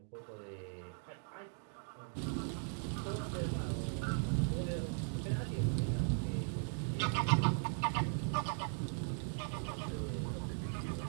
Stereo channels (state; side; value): silent; left; 52 dB below the other